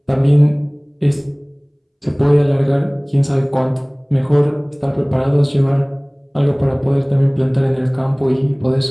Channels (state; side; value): identical; both; correlation 1.00